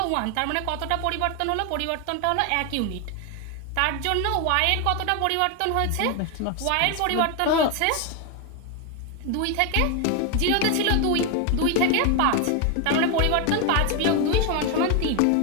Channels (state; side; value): different; both; correlation 0.01